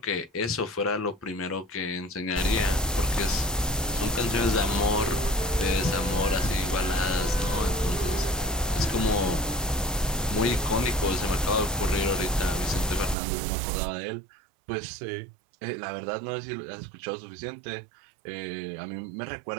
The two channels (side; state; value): left; drops out; at 13.2 s